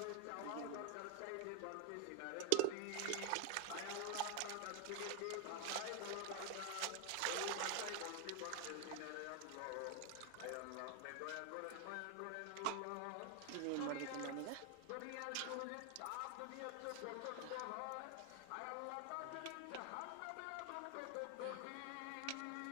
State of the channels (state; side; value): different; both; correlation 0.00